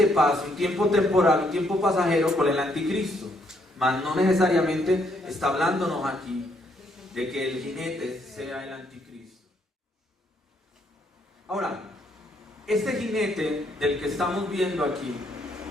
paz, un tiempo temporal, un tiempo pasajero con el anticristo. Mas no necesariamente está hablándonos aquí de que el jinete sea el anticristo. Ahora, este jinete del que estamos viendo aquí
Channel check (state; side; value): normal; both; correlation 0.72